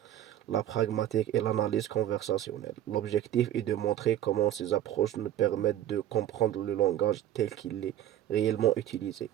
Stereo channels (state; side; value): quieter; left; 12.1 dB